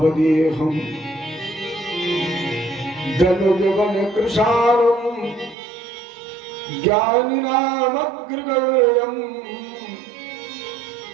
दनुजवन कृशारं ज्ञानिनामग्रगण्यं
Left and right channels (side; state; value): left; drops out; at 5.6 s